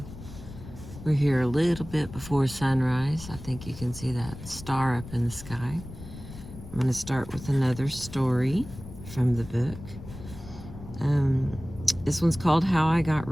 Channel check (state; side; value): noise; left; rumble, 14 dB below the sound